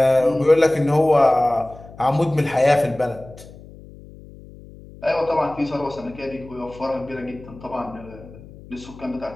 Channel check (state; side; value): noise; left; hum, 19 dB below the sound